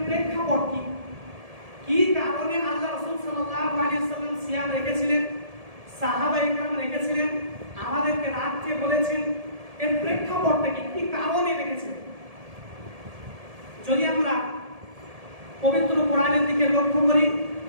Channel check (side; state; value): left; late; 1.7 ms